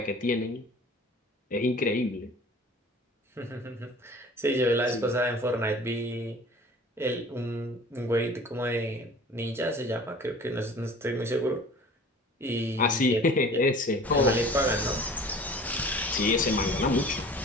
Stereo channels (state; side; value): normal; both; correlation 0.45